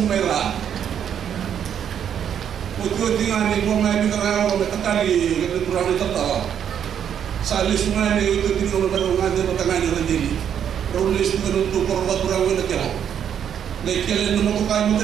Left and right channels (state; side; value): quieter; left; 8.8 dB